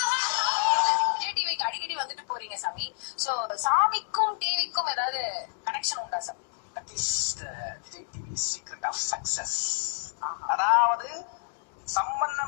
விஜய் டிவிக்கு அடிக்கடி வந்துட்டு போறீங்க சாமி. சோ சாமிக்கும் டிவிக்கும் ஏதாவது கனெக்ஷன் உண்டா சாமி? That is the Vijay TV secret of success. அதாவது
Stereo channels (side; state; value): right; silent; digital silence